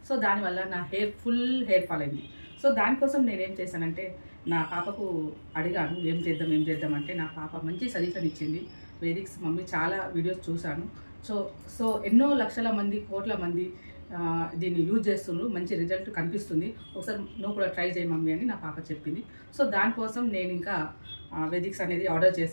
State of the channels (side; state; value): both; inverted; correlation -1.00